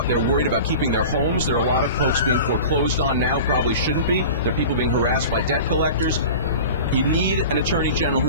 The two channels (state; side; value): inverted; both; correlation -0.36